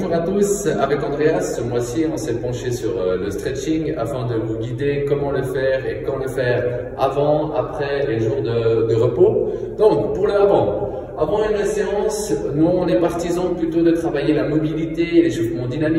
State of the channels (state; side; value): identical; both; correlation 1.00